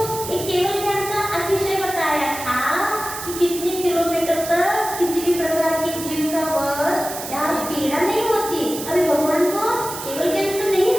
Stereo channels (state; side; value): noise; right; hiss, 9 dB below the sound